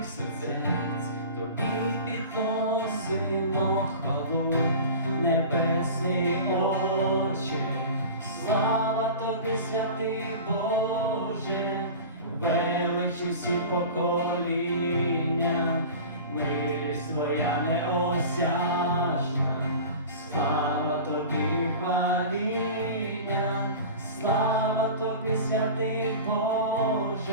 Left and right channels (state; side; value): inverted; both; correlation -0.35